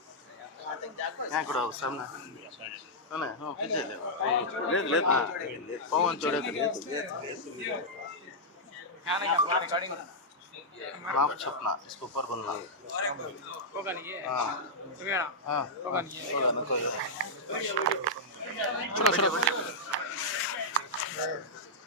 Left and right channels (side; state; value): both; normal; correlation -0.08